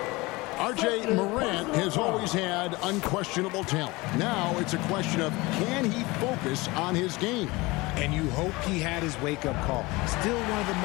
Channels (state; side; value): quieter; right; 22.7 dB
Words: R.J. Morant has always had unquestionable talent. Now it's a question of, can he focus on his game? And you hope he had his wake-up call. Still one of the